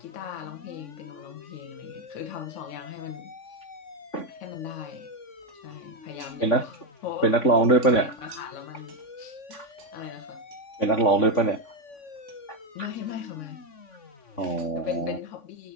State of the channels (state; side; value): late; right; 3.5 ms